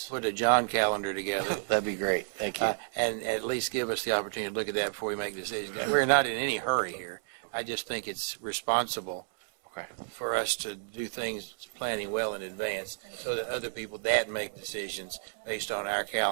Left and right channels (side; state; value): left; silent; digital silence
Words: put a John calendar together? That'd be great. Thank you. And at least give us the opportunity to look at that before we make decisions. We're not in any hurry here. I just think it's responsible for us to do things planning well in advance so that other people that make decisions based on our